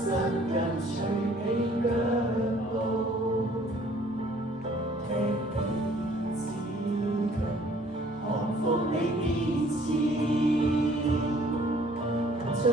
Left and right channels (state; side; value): normal; both; correlation 0.57